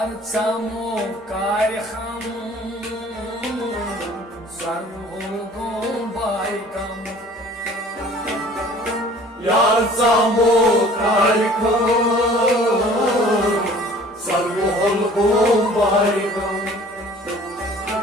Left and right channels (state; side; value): normal; both; correlation 0.50